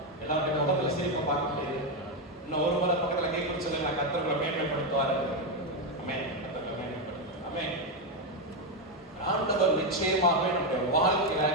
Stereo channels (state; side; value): normal; both; correlation 0.07